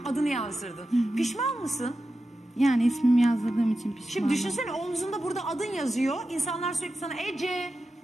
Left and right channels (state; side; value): normal; both; correlation 0.91